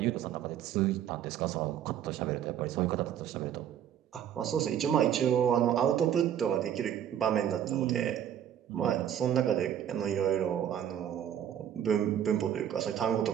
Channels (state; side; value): quieter; left; 9.9 dB